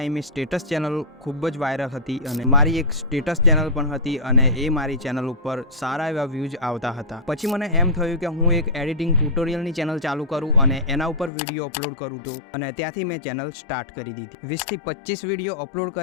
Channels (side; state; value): right; drops out; at 11.3 s